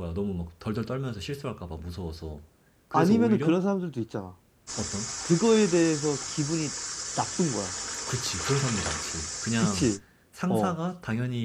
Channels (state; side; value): identical; both; correlation 1.00